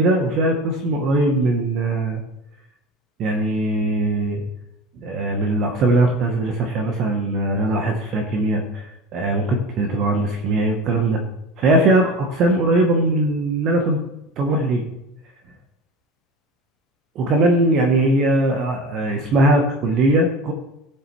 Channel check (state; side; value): normal; both; correlation 0.33